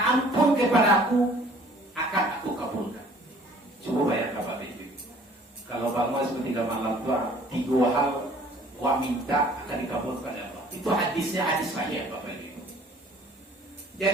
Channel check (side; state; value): both; normal; correlation 0.54